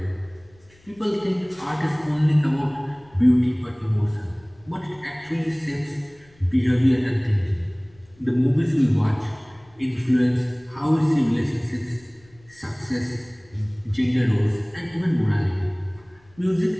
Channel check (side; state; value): left; noise; rumble, 29 dB below the sound